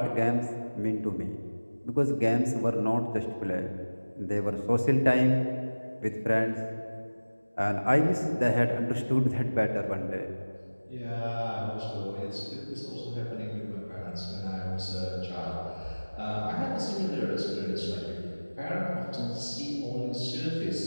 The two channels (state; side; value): inverted; both; correlation -1.00